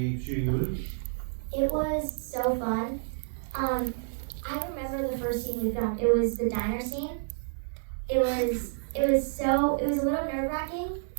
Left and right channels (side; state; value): left; silent; digital silence